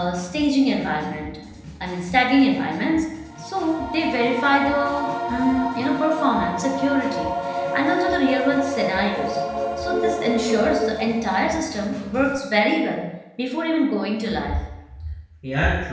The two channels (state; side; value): identical; both; correlation 1.00